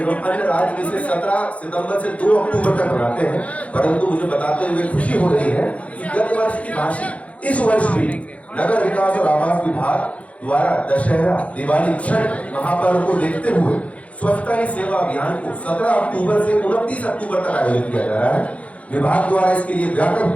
एवं अन्य राज्य इसे 17 सितंबर से 2 अक्टूबर तक मनाते हैं, परंतु मुझे बताते हुए खुशी हो रही है कि गत वर्ष की भांति इस वर्ष भी नगर विकास और आवास विभाग द्वारा दशहरा, दिवाली, छठ महापर्व को देखते हुए स्वच्छता ही सेवा अभियान को 17 अक्टूबर से 29 अक्टूबर तक आयोजित किया जा रहा है। विभाग द्वारा इसके लिए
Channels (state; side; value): late; right; 0.065 ms